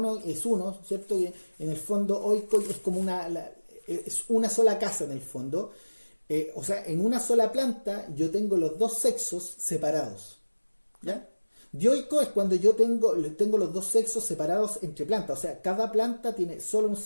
es uno, ¿cierto? Que en el fondo oico es como es una sola casa en el fondo. O sea, en una sola planta yo tengo los dos sexos separados. ¿Ya? Dioico es cuando yo tengo los dos sexos separados entre plantas. O sea, cada planta tiene solo un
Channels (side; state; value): both; inverted; correlation -1.00